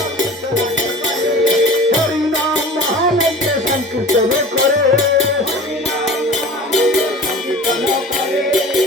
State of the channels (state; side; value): normal; both; correlation 0.39